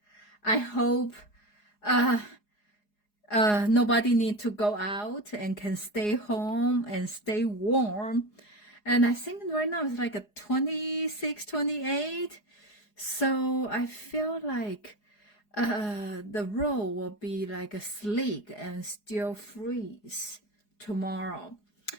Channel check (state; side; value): late; right; 4.8 ms